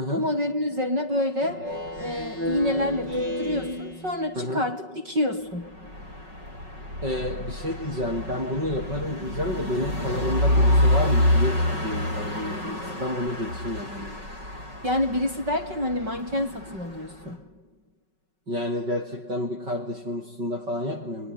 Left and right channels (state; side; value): late; left; 5.4 ms